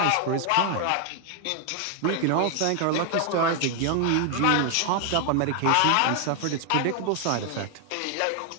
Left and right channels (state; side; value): different; both; correlation 0.00